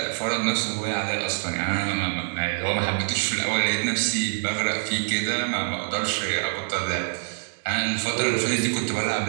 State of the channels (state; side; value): silent; left; digital silence